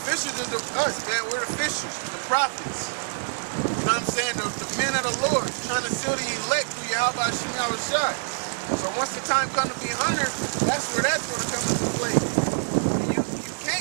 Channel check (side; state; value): left; silent; digital silence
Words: fishers are us, man. We're the fishers, the prophets. You know what I'm saying? The men of the Lord, trying to seal the elect through Yahweh Hashem Yahushai. So once the time comes to be 100, that's where that's going to come into play. You